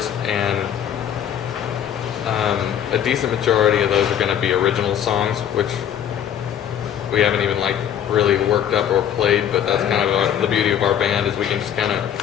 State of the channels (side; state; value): right; quieter; 9.7 dB